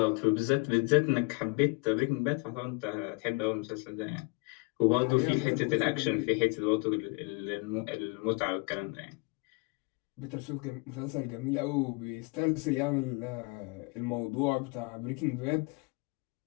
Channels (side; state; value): right; quieter; 29.9 dB